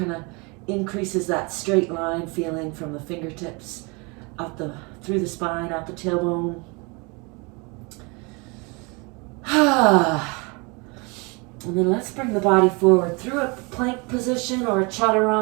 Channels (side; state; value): left; quieter; 29.4 dB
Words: of increases that straight line feeling from the fingertips out through the spine, out the tailbone. And then let's bring the body forward through a plank position or a